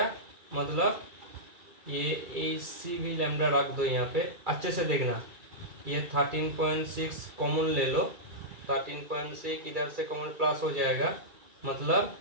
मतलब ये AC भी लैम्डा रख दो यहाँ पे, अच्छे से देखना। ये 13.6 कॉमन ले लो, 13.6 इधर से कॉमन प्लस हो जाएगा, मतलब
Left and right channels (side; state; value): left; late; 2.3 ms